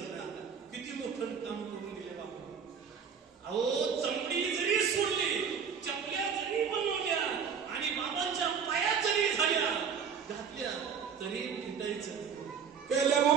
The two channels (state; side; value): quieter; left; 6.8 dB